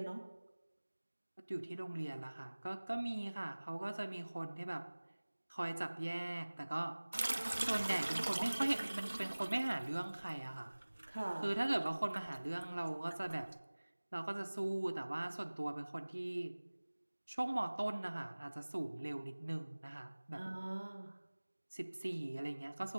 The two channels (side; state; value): both; inverted; correlation -1.00